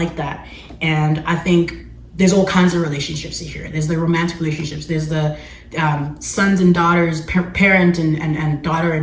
that. And I think there's all kinds of relationships here. There's the romantic relationships, there's the sons and daughters, parent and daughter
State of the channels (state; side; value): identical; both; correlation 1.00